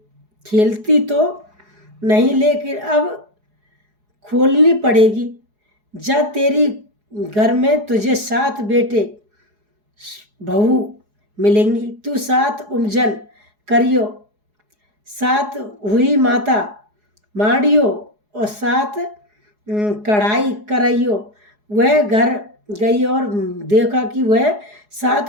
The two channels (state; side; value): late; left; 4.8 ms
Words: खेलती तो नहीं, लेकिन अब खोलनी पड़ेगी। जब तेरी घर में तुझे 7 बेटे बहू मिलेंगी, तू 7 उपजन करियो, 7 हुई माता माड़ियो और 7 कढ़ाई कराइयो। वह घर गई और देखा कि वह